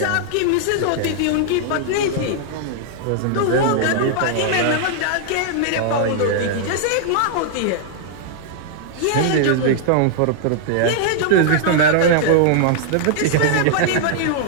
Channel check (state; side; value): different; both; correlation -0.01